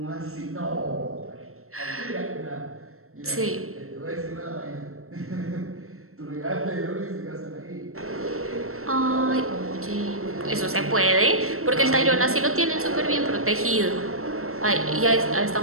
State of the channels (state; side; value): late; left; 0.63 ms